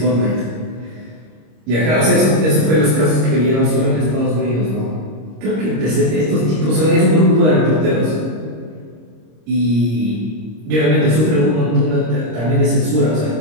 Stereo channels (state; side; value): late; left; 26 ms